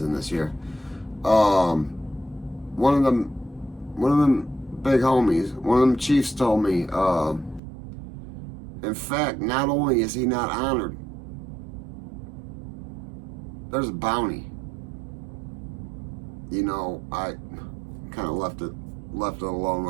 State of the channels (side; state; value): left; drops out; at 7.6 s